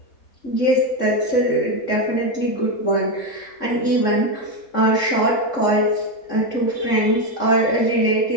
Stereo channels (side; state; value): right; late; 3.6 ms